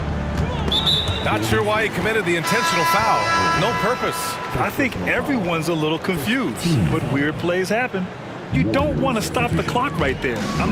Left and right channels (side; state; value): both; identical; correlation 1.00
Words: Not sure why he committed the intentional foul. No purpose. I think everyone's a little confused, but weird plays happen. You don't want to stop the clock right there.